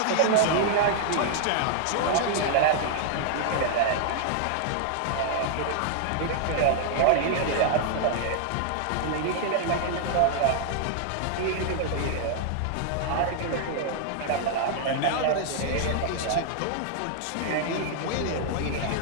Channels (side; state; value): both; different; correlation 0.00